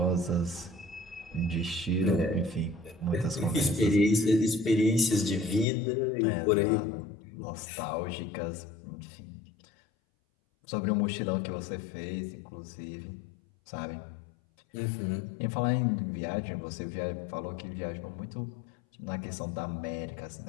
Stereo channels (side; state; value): right; drops out; at 5.7 s